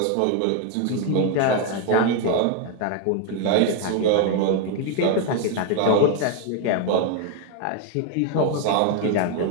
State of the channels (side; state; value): both; different; correlation 0.01